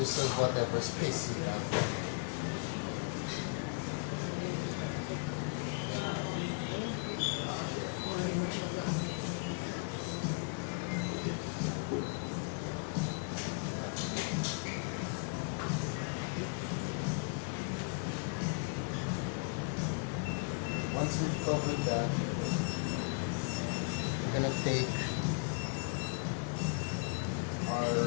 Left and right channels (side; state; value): right; quieter; 34.4 dB